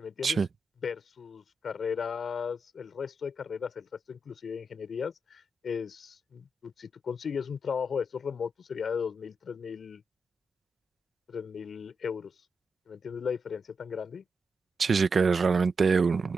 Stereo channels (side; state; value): both; normal; correlation 0.85